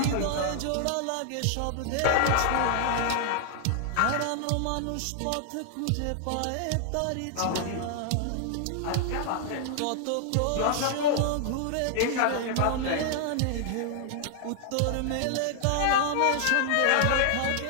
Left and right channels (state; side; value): different; both; correlation 0.00